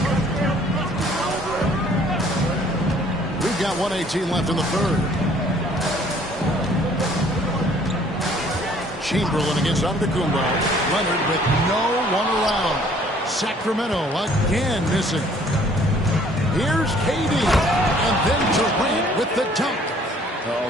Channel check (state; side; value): normal; both; correlation 0.58